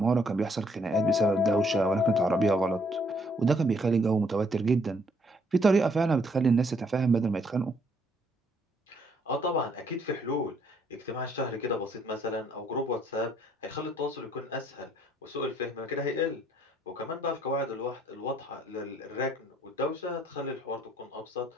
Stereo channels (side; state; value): both; normal; correlation 0.67